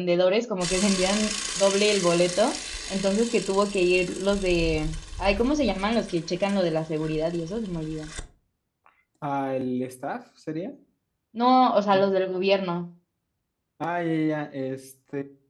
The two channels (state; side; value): identical; both; correlation 1.00